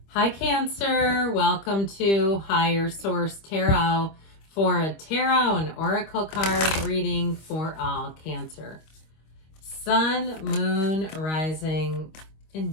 Hi Cancer, welcome to Higher Source Tarot for a tarot and oracle card reading for all Cancer. Sun, Moon, Rising, and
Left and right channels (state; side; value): late; right; 25 ms